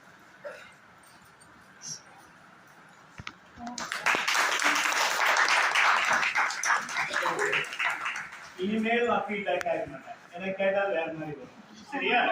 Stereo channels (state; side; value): identical; both; correlation 1.00